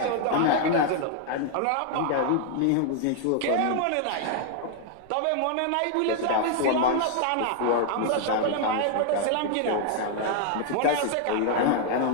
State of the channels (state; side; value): different; both; correlation 0.00